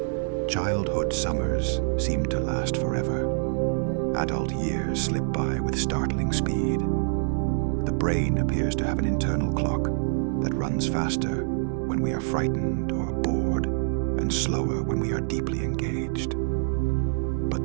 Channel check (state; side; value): silent; left; 60 dB below the other